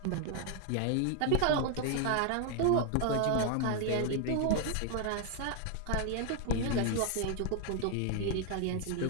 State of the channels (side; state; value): both; different; correlation 0.00